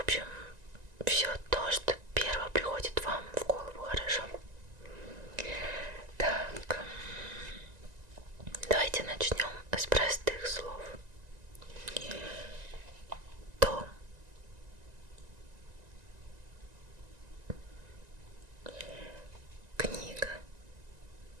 все то, что первое приходит вам в голову, хорошо? Так, давайте начнем с простых слов. Дом. Книга.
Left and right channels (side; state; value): left; late; 1.9 ms